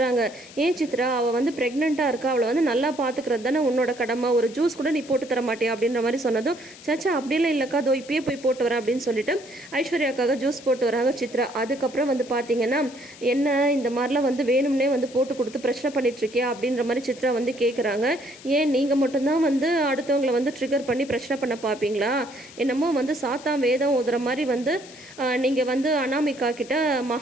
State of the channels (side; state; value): left; noise; hiss, 19 dB below the sound